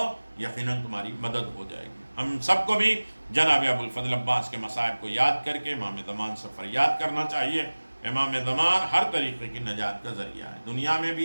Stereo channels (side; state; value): both; inverted; correlation -1.00